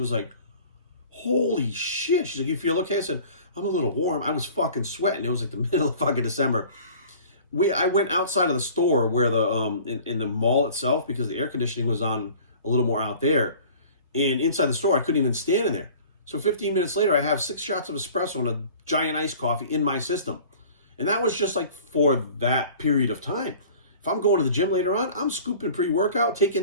like, holy shit. She's like, you feel okay? I said, I'm a little warm. I was fucking sweating. It was like the middle of fucking December. I went outside of the store where in the mall itself, because the air conditioning was on a little more out there. And inside the store, I couldn't even stand in there. So 15 minutes later, I have 6 shots of espresso and a giant iced coffee in my system. And that was just like for that period of time. If I'm going to the gym later on, I'm scooping pre-workout,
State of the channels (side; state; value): both; inverted; correlation -0.46